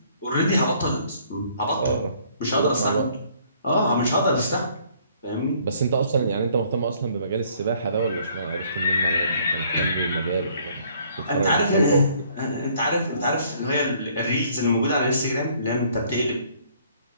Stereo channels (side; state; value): both; inverted; correlation -0.62